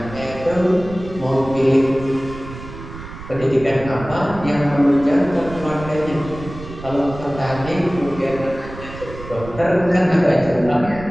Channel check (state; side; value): noise; right; rumble, 13 dB below the sound